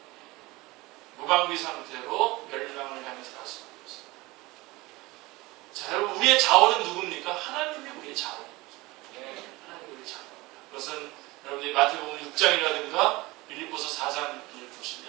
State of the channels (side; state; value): left; quieter; 21.5 dB